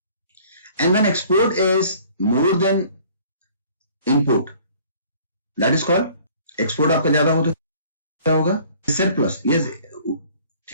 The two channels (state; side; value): inverted; both; correlation -0.54